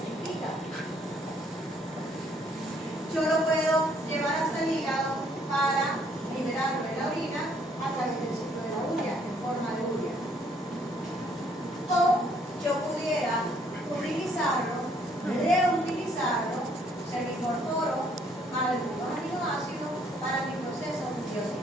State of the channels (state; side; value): normal; both; correlation 0.65